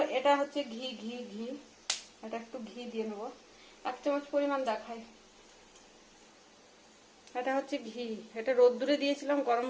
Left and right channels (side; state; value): both; identical; correlation 1.00